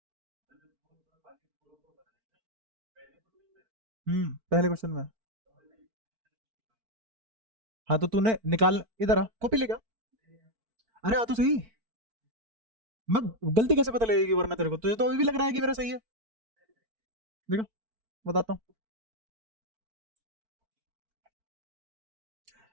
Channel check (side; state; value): left; late; 4.5 ms